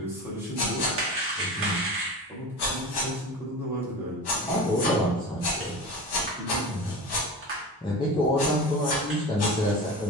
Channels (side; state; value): both; normal; correlation 0.30